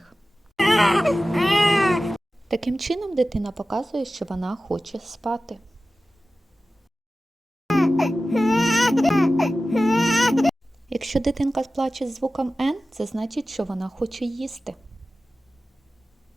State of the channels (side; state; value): both; normal; correlation 0.95